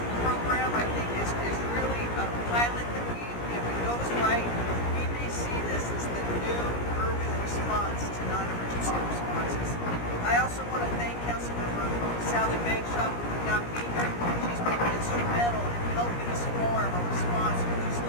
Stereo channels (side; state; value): right; late; 17 ms